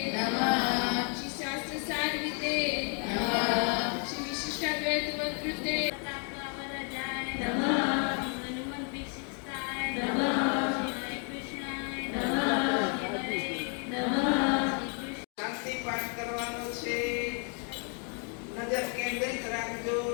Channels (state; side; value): quieter; right; 39.8 dB